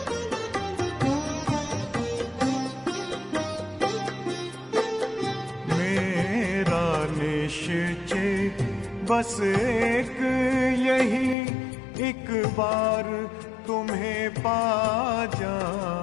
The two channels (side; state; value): right; drops out; at 11.4 s